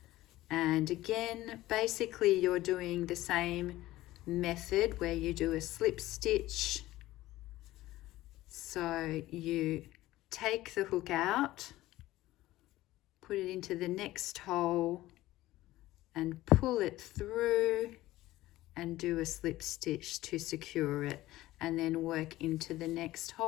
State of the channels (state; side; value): quieter; right; 16.5 dB